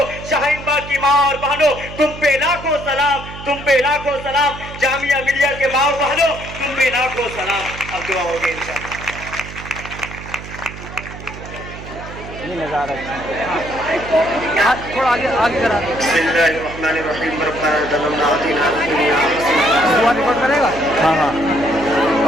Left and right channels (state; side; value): noise; right; hum, 12 dB below the sound